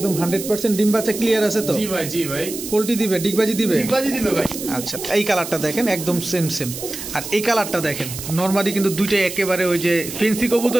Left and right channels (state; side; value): noise; right; hiss, 9 dB below the sound